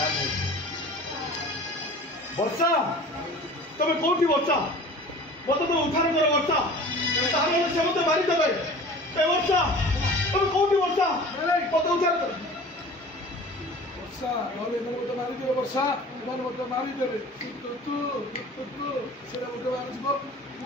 ବର୍ଷା ତମେ କୋଉଠି ବର୍ଷା ମତେ ତ ଉଦ୍ଧାର କର ବର୍ଷା ତାହେଲେ ସେ ମତେ ମାରିଦେବେ। ଏ ବର୍ଷା ତମେ କୋଉଠି ବର୍ଷା ମତେ ଉଦ୍ଧାର କର। ବର୍ଷା ନହେଲେ ଏମାନେ ମତେ ମାରିଦେବେ। ବର୍ଷା ଏମାନେ ମତେ ମାରିଦେବେ। ସେଟା ମତେ ମାରିଯିବ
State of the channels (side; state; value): both; normal; correlation 0.42